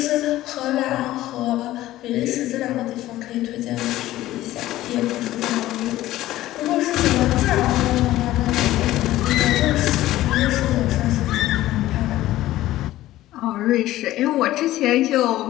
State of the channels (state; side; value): quieter; right; 15.3 dB